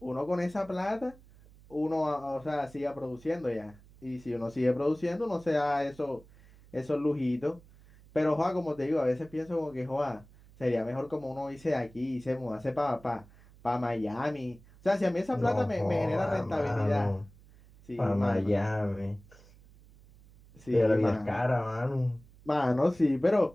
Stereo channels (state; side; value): noise; right; hum, 24 dB below the sound